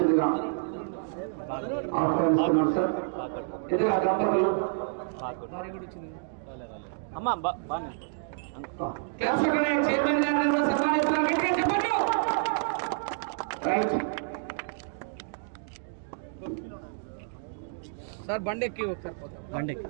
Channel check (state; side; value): silent; left; digital silence